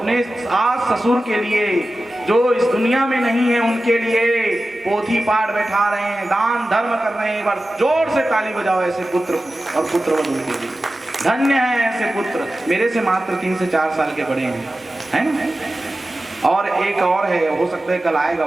सास ससुर के लिए जो इस दुनिया में नहीं है, उनके लिए पोथी पाठ बैठा रहे हैं, दान धर्म कर रहे हैं। एक बार जोर से ताली बजाओ ऐसे पुत्र और पुत्रवधू के लिए। धन्य है ऐसे पुत्र। मेरे से मात्र 3 से 4 साल के बड़े हैं, है ना। और एक और है, हो सकता है कल आएगा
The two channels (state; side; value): normal; both; correlation 0.94